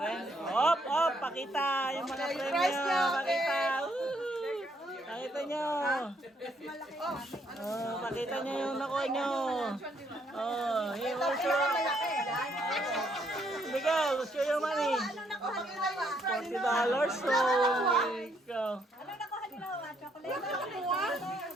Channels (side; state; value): both; normal; correlation 0.71